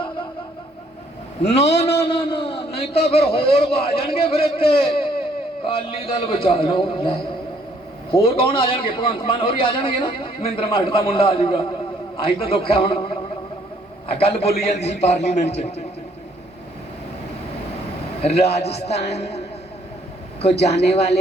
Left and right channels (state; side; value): normal; both; correlation 0.65